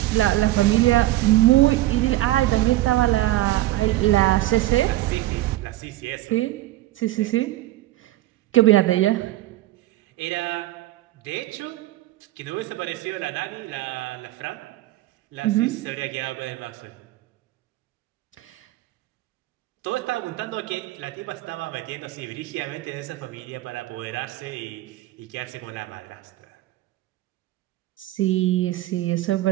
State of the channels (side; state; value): left; quieter; 16.4 dB